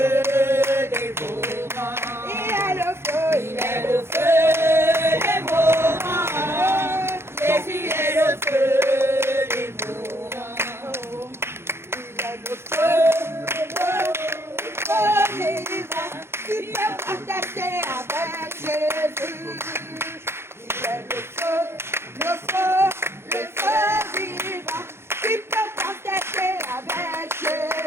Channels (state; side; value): late; left; 0.12 ms